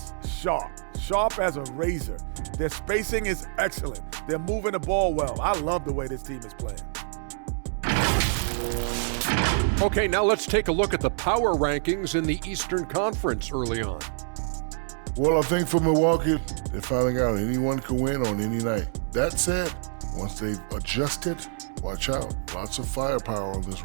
sharp as a razor. Their spacing is excellent. They're moving the ball well. I love the way this team is playing. Okay, now let's take a look at the power rankings in the Eastern Conference early on. Well, I think for Milwaukee, they're finding out anyone can win on any night. That said, once they've adjusted, watch out. Lots of firepower on this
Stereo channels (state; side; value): silent; left; digital silence